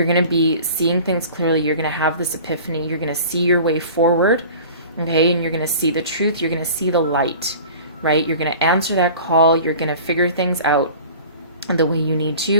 going to be seeing things clearly. You're going to have this epiphany. You're going to see your way forward, okay? And you're going to see the truth. You're going to see the light, right? You're going to answer that call. You're going to figure things out the way you need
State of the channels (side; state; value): both; inverted; correlation -0.42